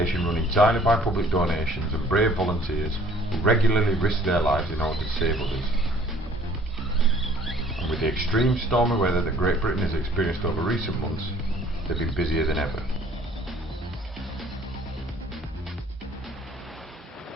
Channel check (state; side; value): normal; both; correlation 0.55